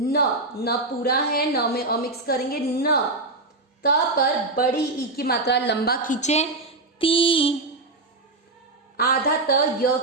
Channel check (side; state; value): left; quieter; 3.1 dB